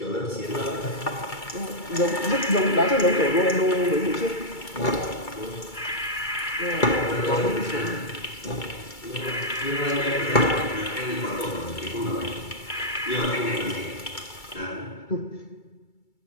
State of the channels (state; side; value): late; right; 2.3 ms